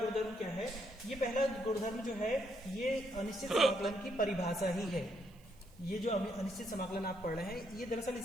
क्या है। ये पहला गुणधर्म जो है ये अनिश्चित समाकलन की परिभाषा ही है। ये जो अनिश्चित समाकलन आप पढ़ रहे हैं ये दरअसल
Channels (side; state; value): right; noise; hiss, 29 dB below the sound